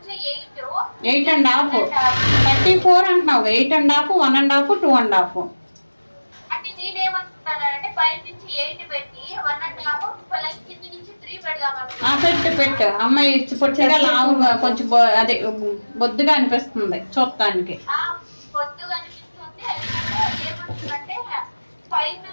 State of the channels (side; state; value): both; inverted; correlation -1.00